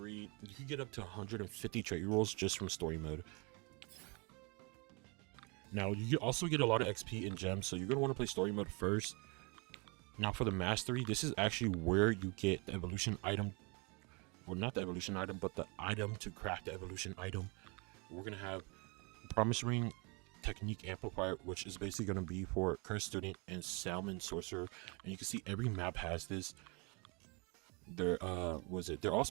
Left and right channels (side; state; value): left; quieter; 29.9 dB